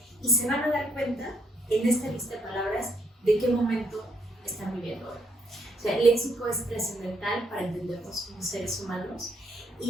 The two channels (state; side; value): normal; both; correlation 0.72